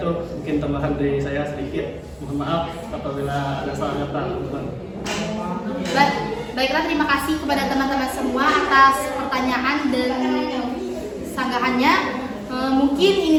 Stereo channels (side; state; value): both; identical; correlation 1.00